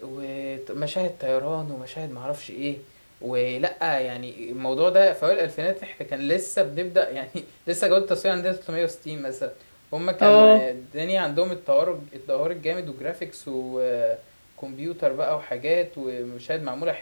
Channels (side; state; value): both; inverted; correlation -1.00